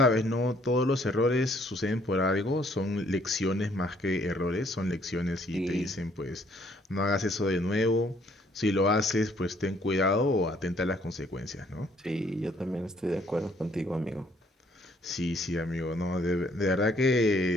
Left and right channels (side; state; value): both; normal; correlation 0.64